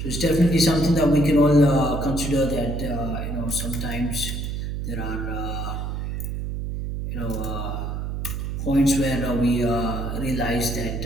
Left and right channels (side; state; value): right; noise; hum, 4 dB below the sound